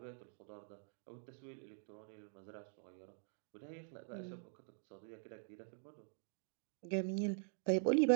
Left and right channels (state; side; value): silent; left; digital silence